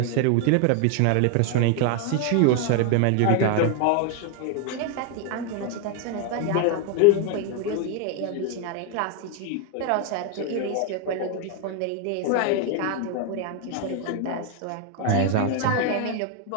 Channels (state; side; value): different; both; correlation 0.01